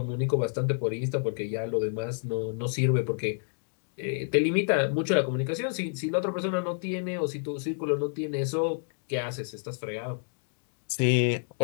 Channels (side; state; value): right; silent; digital silence